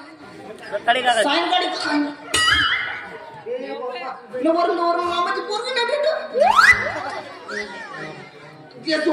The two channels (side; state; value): both; identical; correlation 1.00